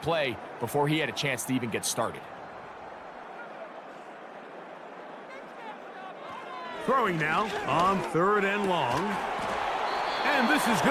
before he had a chance to even get started. Throwing now on 3rd and long. And this is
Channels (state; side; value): identical; both; correlation 1.00